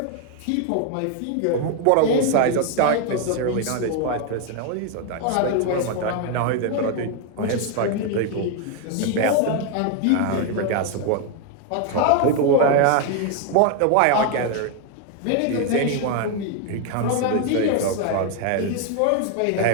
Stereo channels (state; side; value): different; both; correlation 0.01